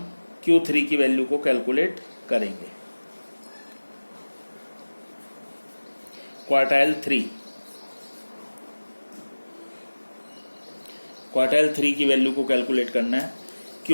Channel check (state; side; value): inverted; both; correlation -1.00